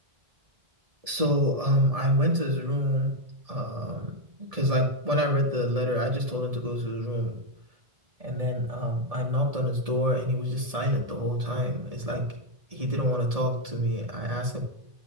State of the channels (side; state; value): left; late; 1.7 ms